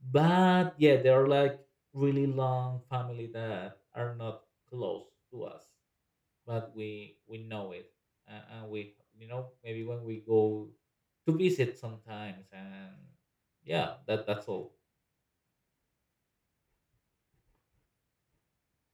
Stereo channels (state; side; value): identical; both; correlation 1.00